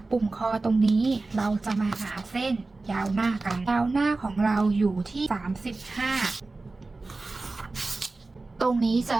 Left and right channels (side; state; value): left; quieter; 3.4 dB